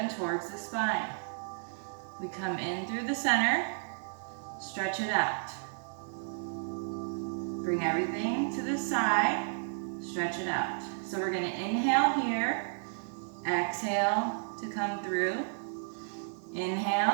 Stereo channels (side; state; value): left; silent; digital silence